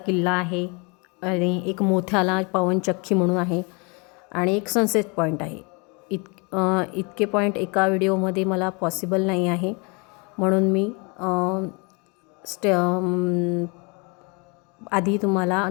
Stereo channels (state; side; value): quieter; right; 31.1 dB